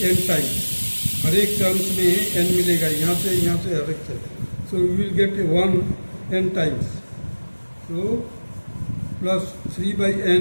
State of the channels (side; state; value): both; inverted; correlation -1.00